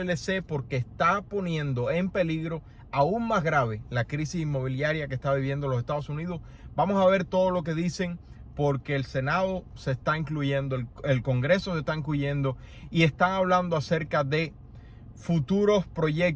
porque está poniendo en peligro aún más grave la crisis inmobiliaria que está viviendo los Estados Unidos. Vamos a ver todo lo que dicen, porque el Senado se está incluyendo, el Congreso se está incluyendo y están hablando acerca de futuros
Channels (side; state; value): both; identical; correlation 1.00